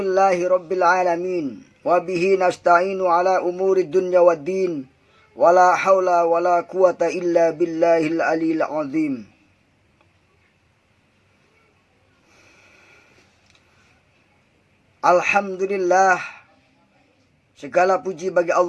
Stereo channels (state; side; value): identical; both; correlation 1.00